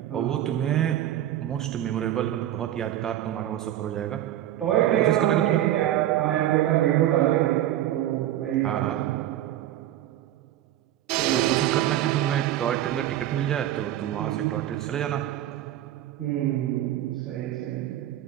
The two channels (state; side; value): quieter; left; 12.7 dB